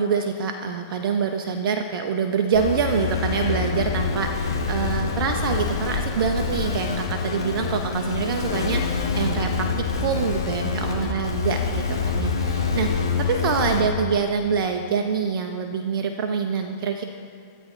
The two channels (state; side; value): inverted; both; correlation -0.39